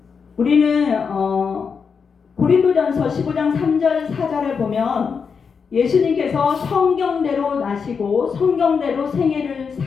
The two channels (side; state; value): right; quieter; 5.9 dB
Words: 우리는 고린도전서 15장 3절 4절을 보면 예수님께서 성경대로 나시고 성경대로 생애를